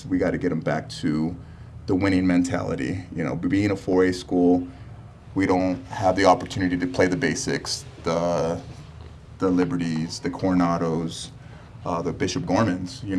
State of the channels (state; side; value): identical; both; correlation 1.00